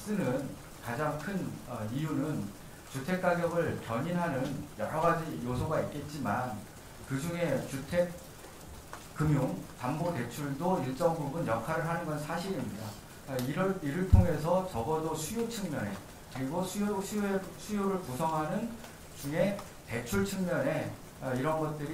가장 큰 이유는 주택 가격을 견인하는 여러 가지 요소가 있겠지만 그 중에 주택 금융 담보 대출도 일정 부분 역할을 하는 건 사실입니다. 이를 통해서 적어도 수요 측면에 그리고 수요를 구성하는 중에 대출 측면에 이런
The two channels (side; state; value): both; identical; correlation 1.00